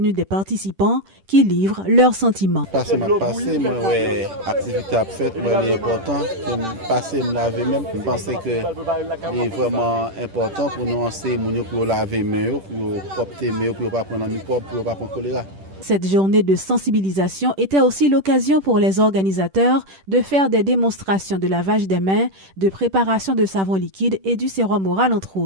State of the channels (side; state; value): left; late; 10 ms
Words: des participants qui livrent leurs sentiments. Passer ma passé, moi ouais, activité à faire, moi c'est important. Passer me laver même. Je pense que c'est vraiment important pour nous enseigner pour laver mains, pour propter mains, pour pas prendre un microbe, pour pas prendre choléra. Cette journée de sensibilisation était aussi l'occasion pour les organisateurs de faire des démonstrations de lavage des mains, de préparation de savon liquide et du sérum oral entre